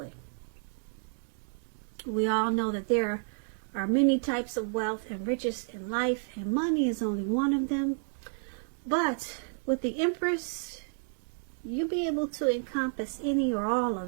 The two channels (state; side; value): silent; left; digital silence